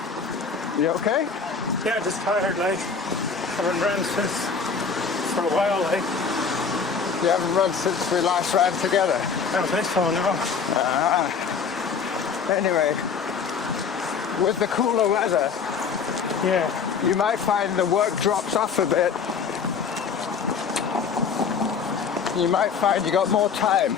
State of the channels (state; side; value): quieter; right; 5.7 dB